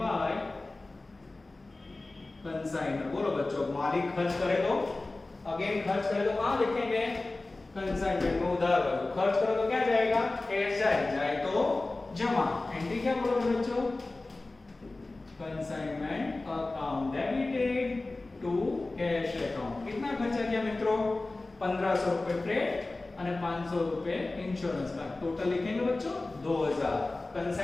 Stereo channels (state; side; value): quieter; right; 3.1 dB